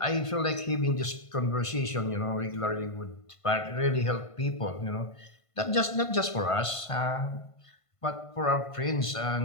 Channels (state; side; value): late; right; 1.5 ms